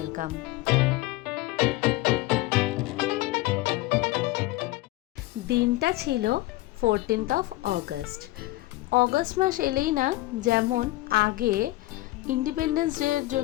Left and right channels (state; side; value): quieter; right; 18.4 dB